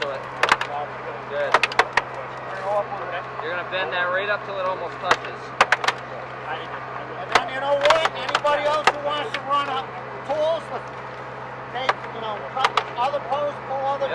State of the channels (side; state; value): both; identical; correlation 1.00